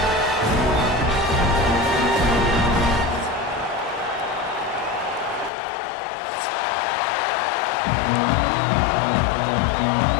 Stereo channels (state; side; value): drops out; right; at 5.5 s